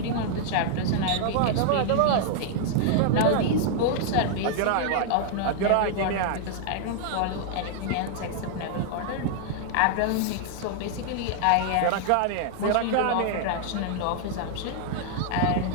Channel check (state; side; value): different; both; correlation 0.00